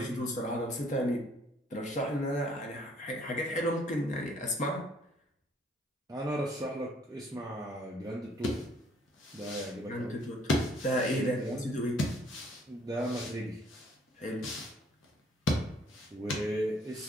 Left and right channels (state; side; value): normal; both; correlation 0.62